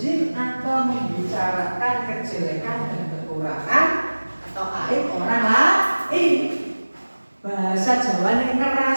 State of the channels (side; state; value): both; inverted; correlation -1.00